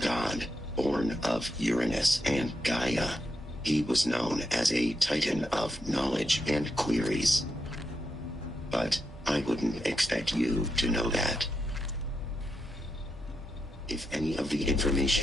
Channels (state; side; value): normal; both; correlation 0.84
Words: born of Uranus and Gaia. He was known as a Titan of knowledge and queries. But I wouldn't expect you to know that. If any of the